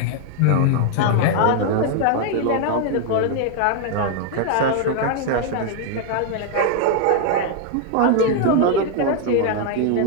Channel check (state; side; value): different; both; correlation 0.00